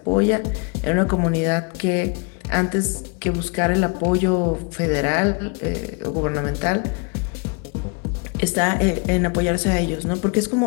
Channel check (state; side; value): quieter; right; 33.6 dB